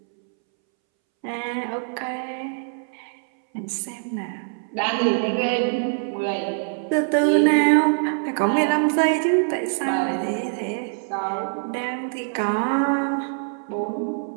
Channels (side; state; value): left; silent; 63 dB below the other